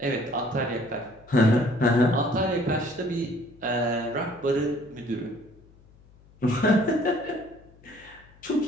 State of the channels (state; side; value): noise; left; hum, 26 dB below the sound